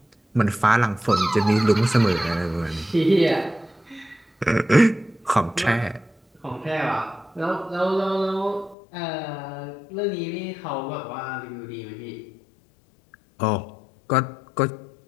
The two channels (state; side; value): drops out; right; at 8.8 s